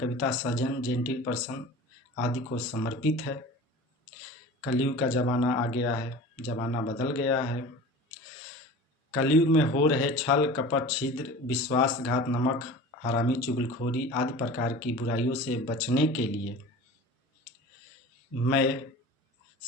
सज्जन, जेंटिल पर्सन आदि को समर्पित है। कलयुग का जमाना आ गया है, जमाना बदल गया है। कलयुग में हो रहे छल कपट, छिद्र, विश्वासघात, नमक हरामी, चुगलखोरी आदि प्रकार की बुराइयों से बचने के लिए मैं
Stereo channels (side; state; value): both; normal; correlation 0.37